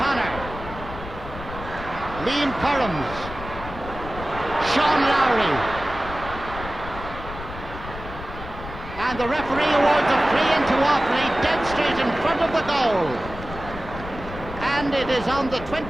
Liam Currams. Sean Lowry. And the referee awards a free into Offaly, dead straight in front of the goal. And it is on the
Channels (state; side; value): noise; left; rumble, 11 dB below the sound